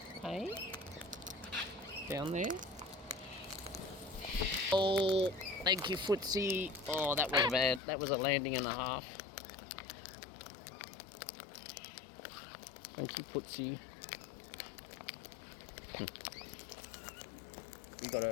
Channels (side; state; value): right; drops out; at 7.8 s